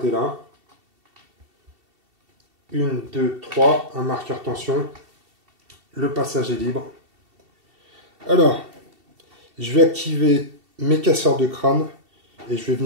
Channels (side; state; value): left; late; 2.7 ms